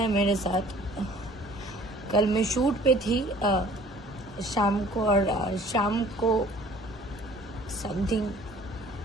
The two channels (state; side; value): normal; both; correlation 0.52